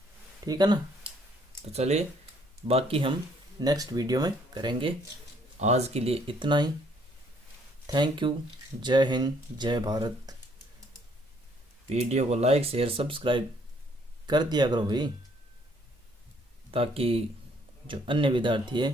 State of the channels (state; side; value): normal; both; correlation 0.65